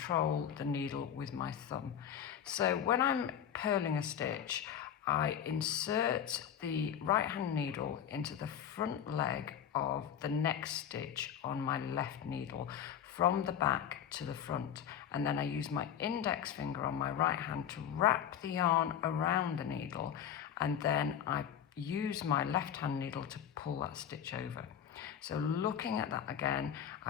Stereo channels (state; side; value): quieter; right; 9.3 dB